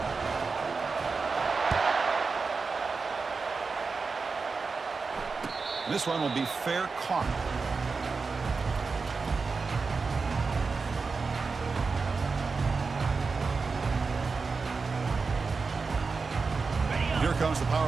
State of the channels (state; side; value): quieter; left; 4.5 dB